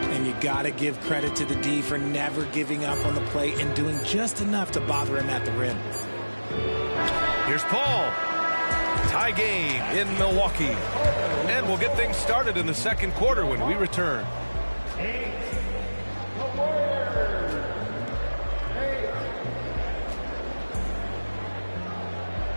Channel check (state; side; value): inverted; both; correlation -1.00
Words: you got to give credit to the D for never giving up on the play and doing just enough to bother him at the rim. Here's Paul. Tie game in Milwaukee. And we'll get things started in the second quarter when we return.